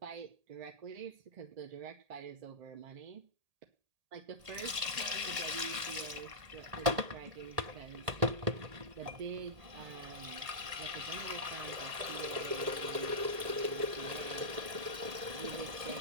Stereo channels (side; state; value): left; late; 1.8 ms